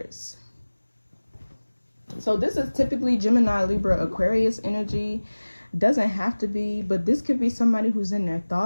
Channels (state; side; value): inverted; both; correlation -1.00